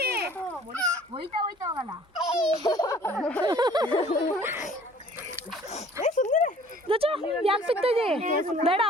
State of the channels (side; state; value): both; normal; correlation 0.53